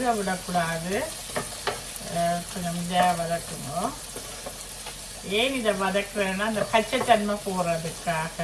விடக்கூடாது. கொஞ்சம் இதாக வதக்குங்க. ஏன் இதை வதக்குறேன்னா அந்த பச்சைத்தன்மை போடுறதுக்காக.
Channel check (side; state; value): both; identical; correlation 1.00